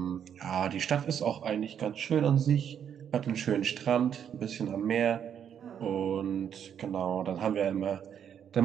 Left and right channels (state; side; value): quieter; left; 8.6 dB